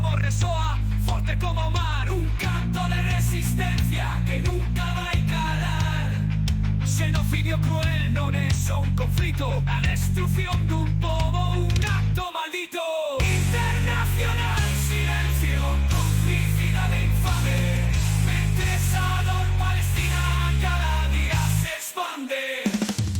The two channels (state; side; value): identical; both; correlation 1.00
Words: resoa forte como o mar, un canto de resistencia que nunca vai calar. Xenocidio cruel non é só un conflito, a destrucción dun pobo, un acto maldito.